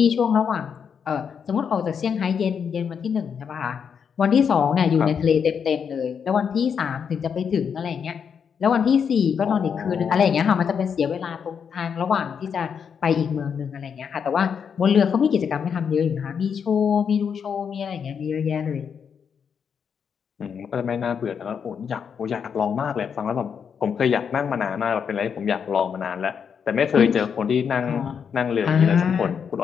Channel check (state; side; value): quieter; right; 7.0 dB